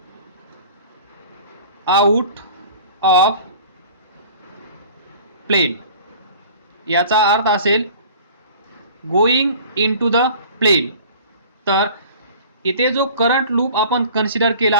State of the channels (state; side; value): inverted; both; correlation -0.45